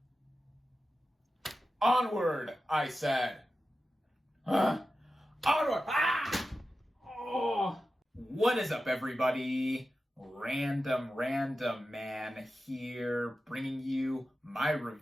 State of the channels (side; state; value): both; normal; correlation 0.93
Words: Onward, I said. Onward! Ah! Oh! What is up, everybody? RandomRandomMan here, bringing you my